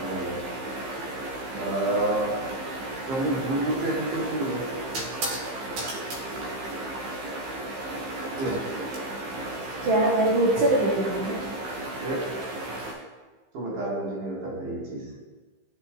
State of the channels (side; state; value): left; late; 15 ms